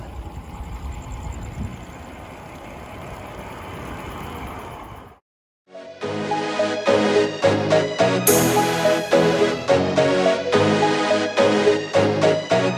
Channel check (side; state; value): both; identical; correlation 1.00